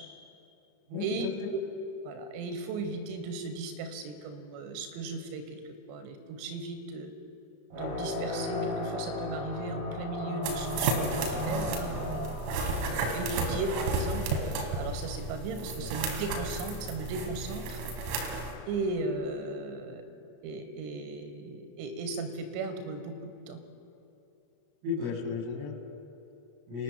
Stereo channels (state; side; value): late; left; 34 ms